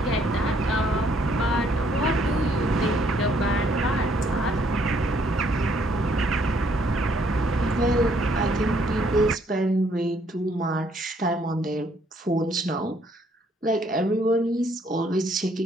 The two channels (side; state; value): both; normal; correlation 0.67